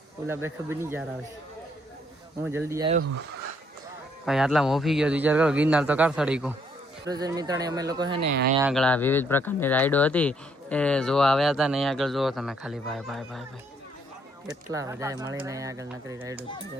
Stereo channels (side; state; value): both; normal; correlation 0.69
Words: ઓલા બે ખબર નહીં જાર આવે. હું જલ્દી આવ્યો ભાઈ, આટલા મોફી ગયો વિચાર કરો. ગિરનાર તો કાર સડી ગયો. મિત્રોને અમે લોકો છે ને અહીંયા આગળ આ વિવિધ પ્રકારની રાઈડો હતી એ જોવા આવ્યા હતા ને અહીંયા આગળ જુઓ તમે ખાલી ભાઈ કેટલા બધા મળીને અહીંયા આગળ નકરી રાઈડો